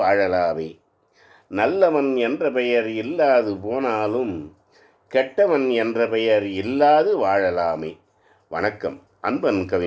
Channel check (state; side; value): identical; both; correlation 1.00